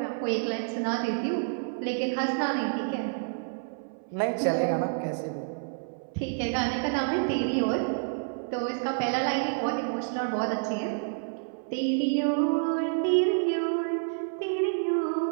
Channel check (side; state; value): left; silent; 59 dB below the other